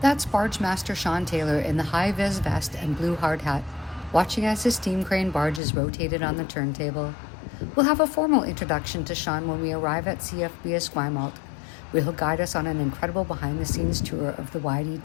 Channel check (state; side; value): drops out; right; at 5.6 s